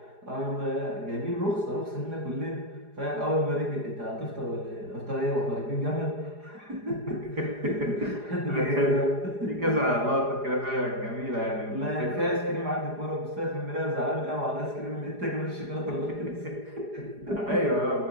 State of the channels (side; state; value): left; late; 4.9 ms